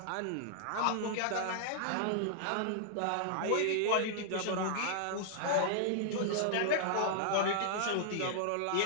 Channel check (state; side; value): different; both; correlation -0.01